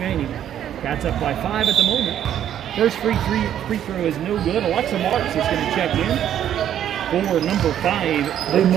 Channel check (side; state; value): left; quieter; 10.5 dB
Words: Cats up by 5 at the moment. First free throw is no good. Alexa Marks is going to check in for number 5.